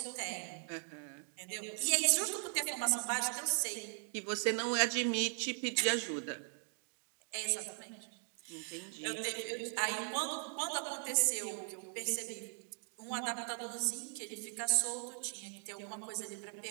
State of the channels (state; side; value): silent; left; 52 dB below the other